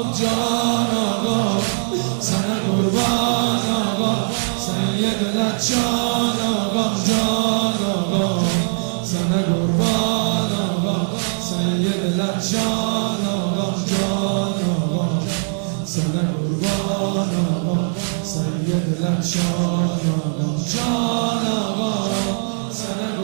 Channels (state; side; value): silent; left; digital silence